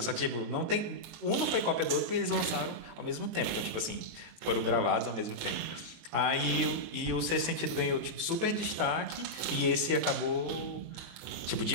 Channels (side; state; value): left; late; 18 ms